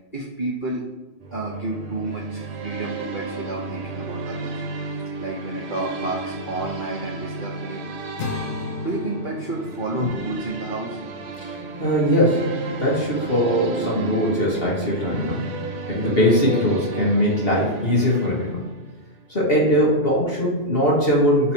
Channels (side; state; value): right; late; 2.8 ms